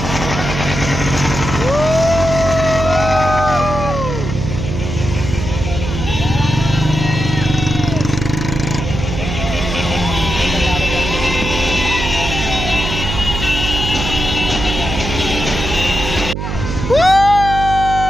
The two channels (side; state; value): right; noise; hum, 4 dB below the sound